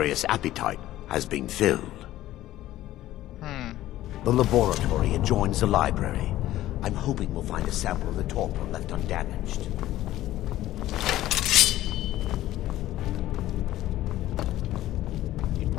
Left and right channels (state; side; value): quieter; right; 14.6 dB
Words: appetite has been filled. The laboratory adjoins the library. I'm hoping we'll find a sample of the torpor left undamaged.